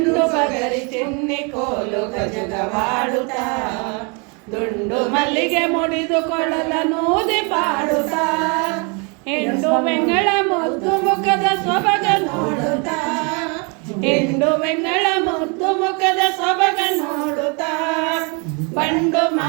ಬಗರಿ ಚಿನ್ನಿ ಕೋಲು ಗಜಗವಾಡುತ್ತಾ ದುಂಡು ಮಲ್ಲಿಗೆ ಮುಡಿದು ಕೊಳಲನೂದಿ ಪಾಡುತ್ತಾ ಹೆಂಡು ಬೆಂಗಳ ಮುದ್ದು ಮುಖದ ಸೊಬಗ ನೋಡುತ್ತಾ ಹೆಂಡು ಬೆಂಗಳ ಮುದ್ದು ಮುಖದ ಸೊಬಗ ನೋಡುತ್ತಾ ಬಂಡು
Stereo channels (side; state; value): left; quieter; 33.2 dB